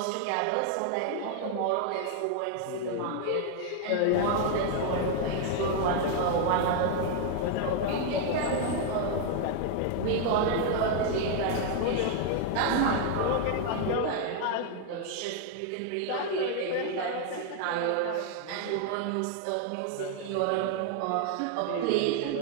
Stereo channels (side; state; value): both; different; correlation 0.00